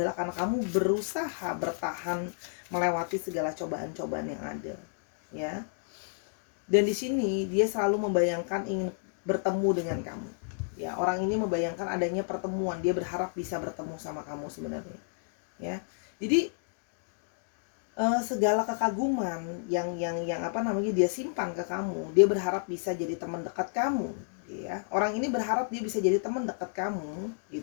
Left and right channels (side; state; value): right; silent; digital silence